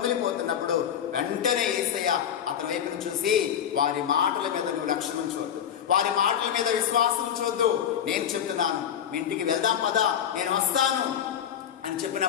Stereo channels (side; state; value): right; quieter; 9.1 dB